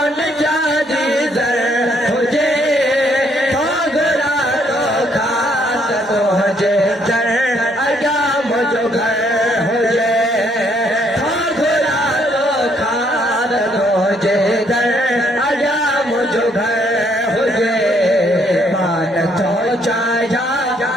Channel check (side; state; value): both; normal; correlation 0.69